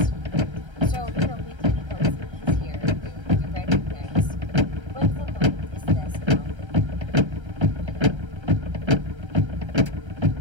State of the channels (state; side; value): late; left; 1.3 ms